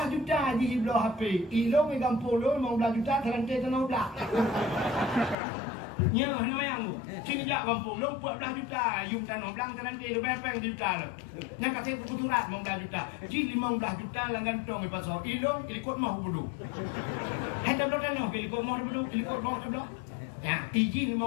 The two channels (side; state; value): right; drops out; at 5.4 s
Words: juta je blor HP. Ilong me gampol 15 juta terangkai tanah blak. Nyo hana mayang tu. Sini jak gampol 14 juta. Yung tanah blak terangkai de bepeng juta lo. Nya kata kuturat 15 juta. Ji 15 juta langgan tong pasal. Ilong ikut mau bodoh. Hendak blok tanah ikut mau bodoh, ikut mau bodoh. Ya, izin